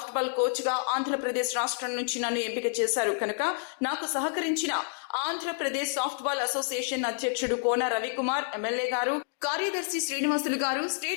బాల్ కోచ్ గా ఆంధ్రప్రదేశ్ రాష్ట్రం నుంచి నన్ను ఎంపిక చేశారు కనుక నాకు సహకరించిన ఆంధ్రప్రదేశ్ సాఫ్ట్ బాల్ అసోసియేషన్ అధ్యక్షుడు కోన రవికుమార్ ఎమ్మెల్యే గారు, కార్యదర్శి శ్రీనివాసులు గారు,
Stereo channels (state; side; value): silent; right; digital silence